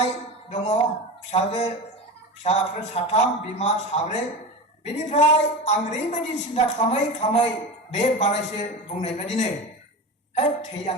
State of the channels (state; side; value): normal; both; correlation 0.26